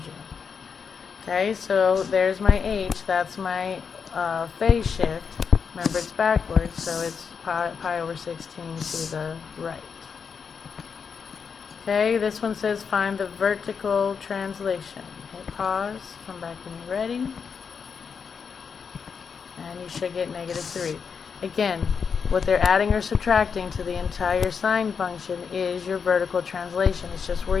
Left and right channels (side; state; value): right; quieter; 6.2 dB